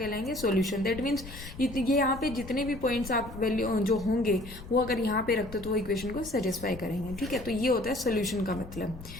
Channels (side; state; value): left; noise; rumble, 13 dB below the sound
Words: सॉल्यूशन। दैट मीन्स ये यहाँ पे जितने भी पॉइंट्स आप वैल्यू जो होंगे वो अगर यहाँ पे रखते तो वो इक्वेशन को सेटिस्फाई करेंगे, ठीक है। तो ये होता है सॉल्यूशन का मतलब।